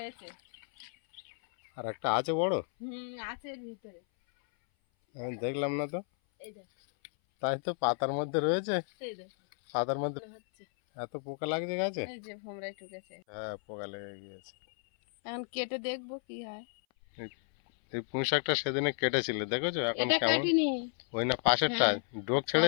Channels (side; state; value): right; silent; 56 dB below the other